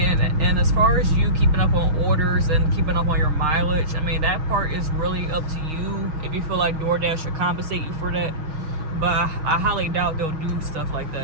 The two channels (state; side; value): late; left; 6.3 ms